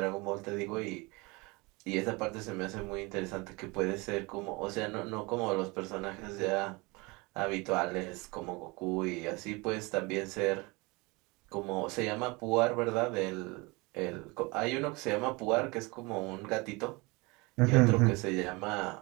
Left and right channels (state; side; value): quieter; left; 25.7 dB